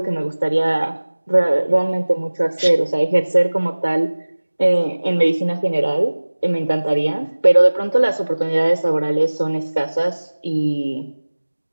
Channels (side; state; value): both; inverted; correlation -1.00